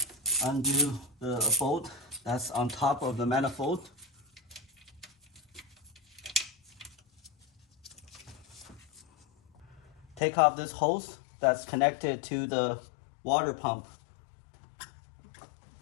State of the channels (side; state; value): right; drops out; at 10.2 s